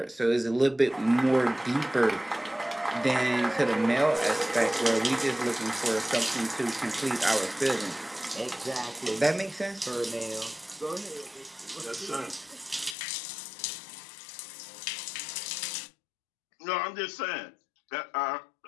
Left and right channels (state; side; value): drops out; right; at 13.0 s